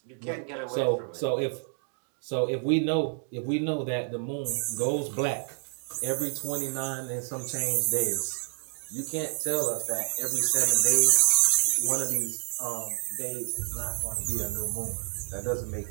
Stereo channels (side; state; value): left; silent; 56 dB below the other